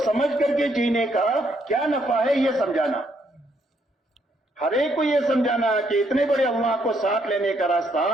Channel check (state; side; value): normal; both; correlation 0.72